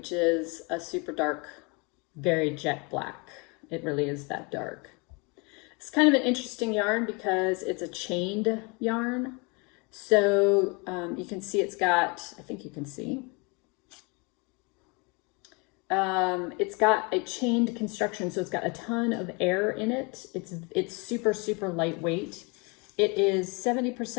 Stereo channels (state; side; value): quieter; right; 30.2 dB